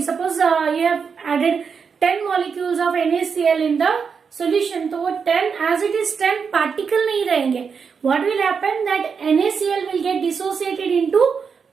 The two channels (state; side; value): quieter; left; 6.0 dB